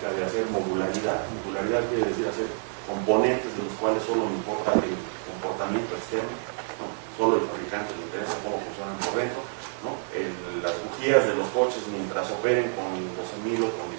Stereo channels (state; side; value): silent; left; 58 dB below the other